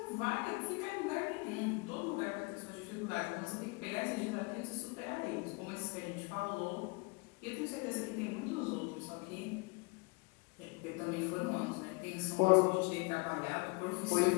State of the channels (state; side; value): quieter; right; 28.0 dB